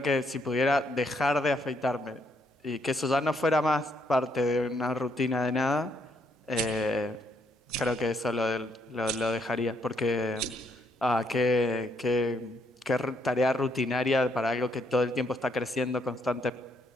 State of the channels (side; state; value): both; normal; correlation 0.73